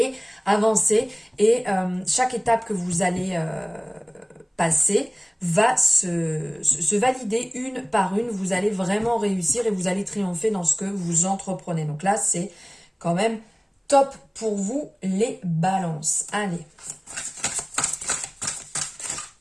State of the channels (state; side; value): identical; both; correlation 1.00